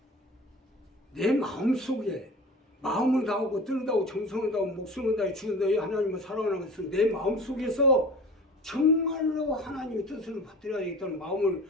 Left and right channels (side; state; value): both; normal; correlation 0.39